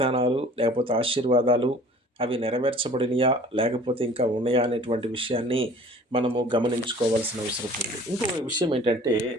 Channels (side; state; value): both; normal; correlation 0.48